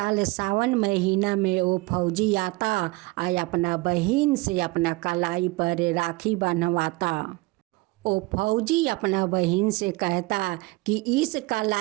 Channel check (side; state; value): left; quieter; 23.0 dB